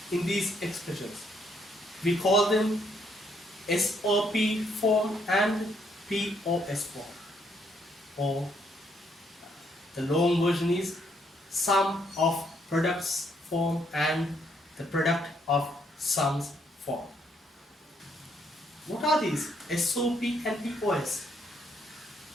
in these expressions. We call them SOP form and POS form. Or the long version is sum of products form and the product of sums form. What are these SOP and POS?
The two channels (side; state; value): both; normal; correlation 0.71